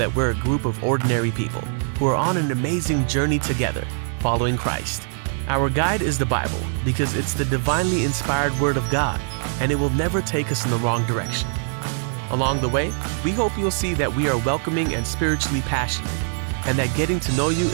we're a group of ordinary people who are on an amazing journey together, following Christ. Our guide is the Bible because it's the divinely inspired Word of God, and it will never take us in the wrong direction. Along the way, we hope you'll see that we are welcoming and spiritually passionate, and that getting to know you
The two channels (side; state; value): left; silent; 64 dB below the other